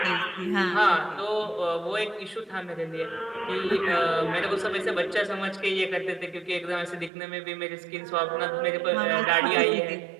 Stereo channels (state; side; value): drops out; left; at 7.1 s